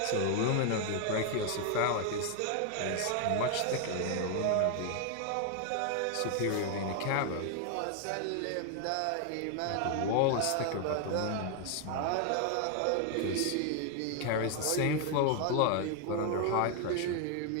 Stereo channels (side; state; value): both; different; correlation 0.00